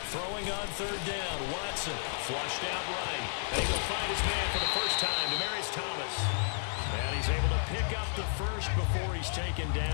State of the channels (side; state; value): right; silent; 56 dB below the other